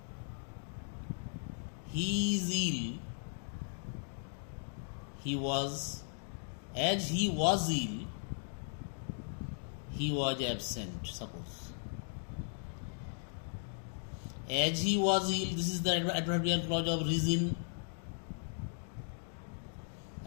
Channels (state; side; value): silent; right; digital silence